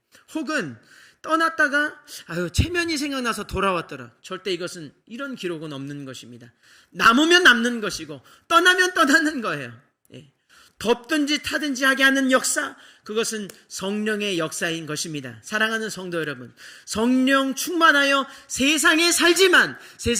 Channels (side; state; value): both; identical; correlation 1.00